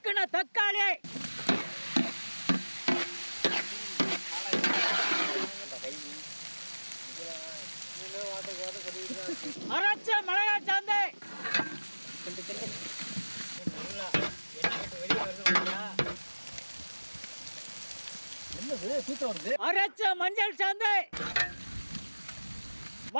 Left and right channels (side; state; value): both; inverted; correlation -1.00